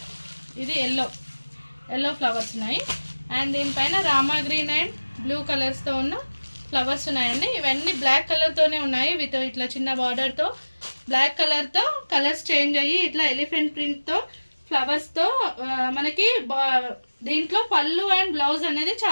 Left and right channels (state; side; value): inverted; both; correlation -1.00